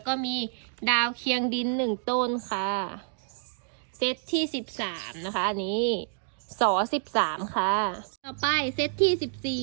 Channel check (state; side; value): silent; left; digital silence